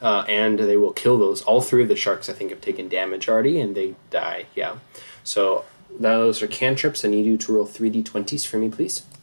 and they will kill those. All 3 of the sharks, I think, have taken damage already, and they die. Yeah. So those are cantrips. I need you to roll 3d20s for me, please.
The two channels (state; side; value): inverted; both; correlation -1.00